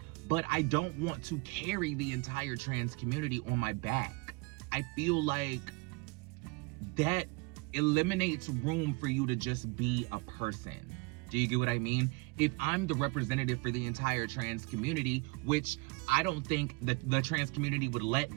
but I don't want to carry the entire trans community on my back. I feel like that eliminates room for you to just be a person. Do you get what I mean? If I'm the representative for the entire trans community, which I don't think that the trans community would let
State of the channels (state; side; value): quieter; left; 27.4 dB